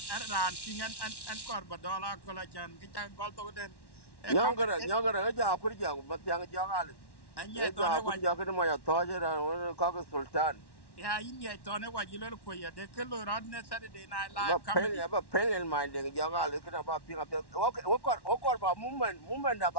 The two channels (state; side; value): late; right; 1.1 ms